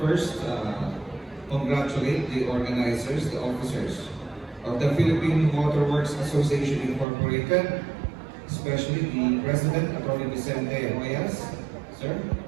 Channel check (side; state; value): left; drops out; at 7.1 s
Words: congratulate the organizers, the officers of the Philippine Waterworks Association Incorporated, especially the President, Attorney Vicente Hoyas. Sir,